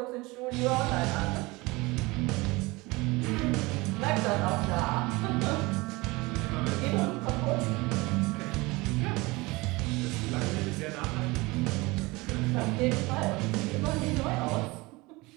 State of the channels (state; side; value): quieter; left; 23.1 dB